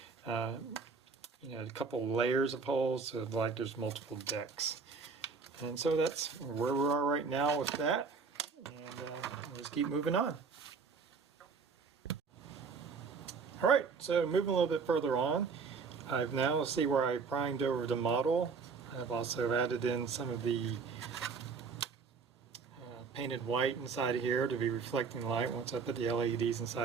a couple layers of holes, so like there's multiple decks. And so that's where we are right now with that, and we'll just keep moving on. Alright, so moving a little bit further on, I've now see where I primed over the model. I've also added in some of the painted white inside of here to be reflecting light once I put the LEDs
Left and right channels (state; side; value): quieter; left; 5.1 dB